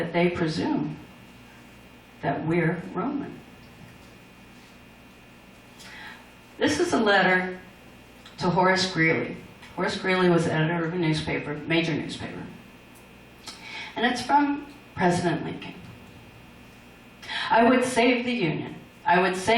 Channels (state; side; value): identical; both; correlation 1.00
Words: they presume that we're Roman? This is a letter to Horace Greeley. Horace Greeley was editor of a newspaper, major newspaper. And it's from President Lincoln. I would save the Union. I would